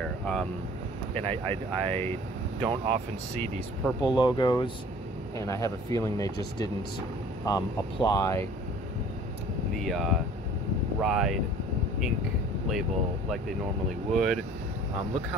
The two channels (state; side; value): normal; both; correlation 0.49